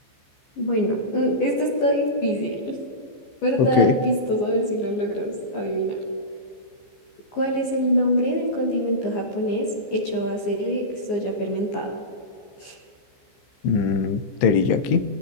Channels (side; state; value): right; late; 15 ms